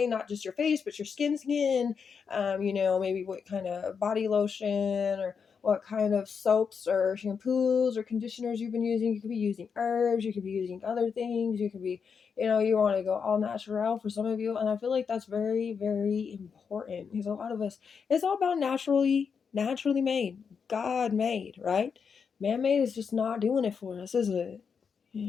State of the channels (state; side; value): quieter; right; 6.2 dB